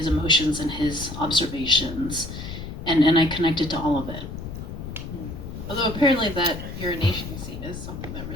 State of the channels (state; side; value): noise; left; rumble, 9 dB below the sound